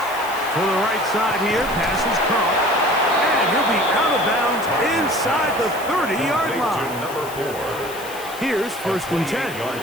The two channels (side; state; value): left; noise; hiss, 15 dB below the sound